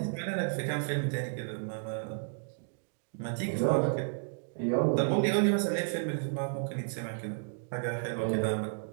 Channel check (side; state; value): left; silent; digital silence